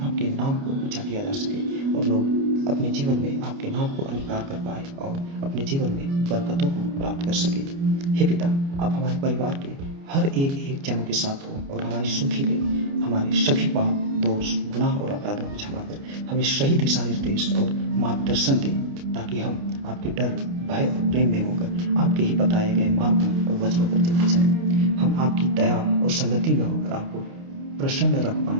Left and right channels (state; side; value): late; left; 29 ms